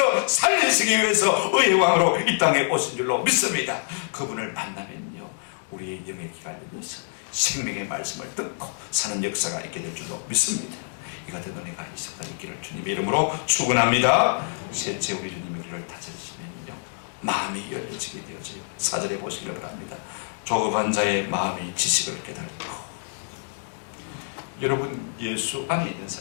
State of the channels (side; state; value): right; silent; digital silence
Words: 살리시기 위해서 의의 왕으로 이 땅에 오신 줄로 믿습니다. 그분을 만나면요, 우리의 영의 귀가 열려서 생명의 말씀을 듣고 사는 역사가 있게 될 줄로 믿습니다. 이 같은 은혜가 있을 수 있기를 주님의 이름으로 축원합니다. 셋째, 우리 주님이 우리를 다스리시면요, 마음이 열려지게 되어져요. 4절에 보시기를 바랍니다. 조급한 자의 마음이 지식을 깨닫고. 여러분, 예수 안에 있는